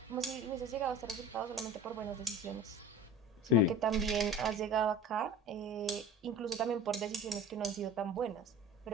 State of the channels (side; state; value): both; normal; correlation 0.38